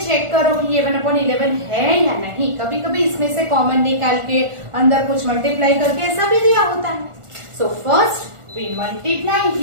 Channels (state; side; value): late; left; 1.4 ms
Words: check करो कि ये 1/11 है या नहीं. कभी कभी इसमें से कॉमन निकाल के अंदर कुछ मल्टीप्लाई करके ऐसा भी दिया होता है. So first we multiply